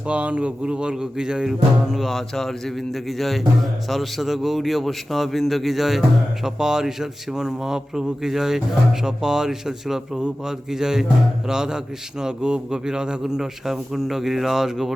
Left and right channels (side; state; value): both; normal; correlation 0.95